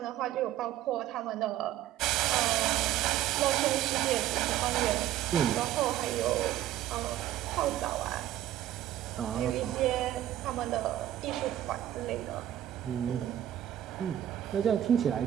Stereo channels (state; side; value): quieter; left; 12.6 dB